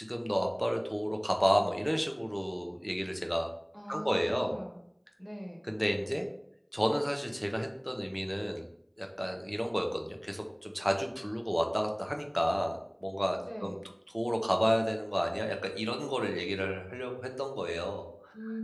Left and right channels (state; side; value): identical; both; correlation 1.00